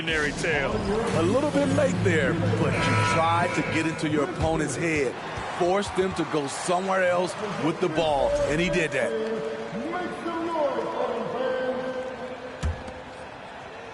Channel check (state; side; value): identical; both; correlation 1.00